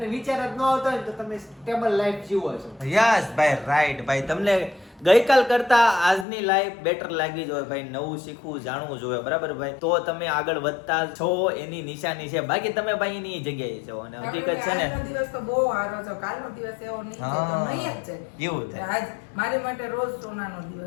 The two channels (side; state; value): right; drops out; at 6.2 s